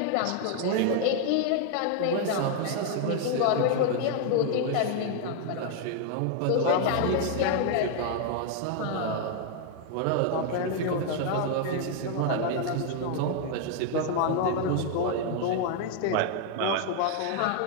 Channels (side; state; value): both; different; correlation 0.00